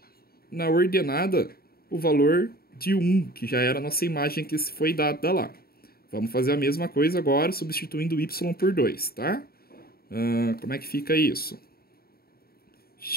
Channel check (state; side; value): late; right; 0.44 ms